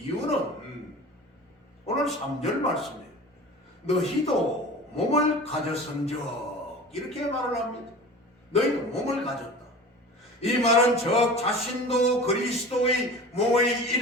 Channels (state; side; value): normal; both; correlation 0.37